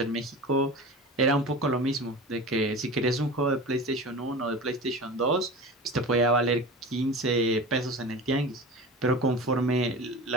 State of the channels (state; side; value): normal; both; correlation 0.33